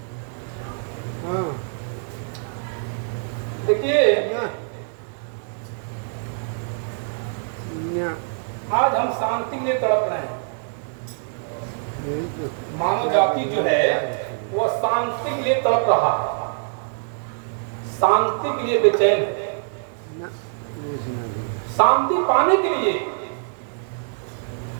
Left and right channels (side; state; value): left; silent; digital silence